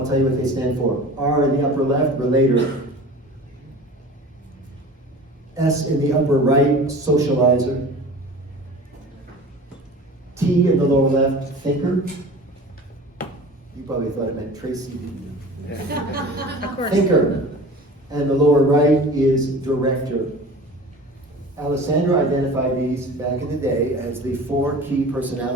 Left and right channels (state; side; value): normal; both; correlation 0.39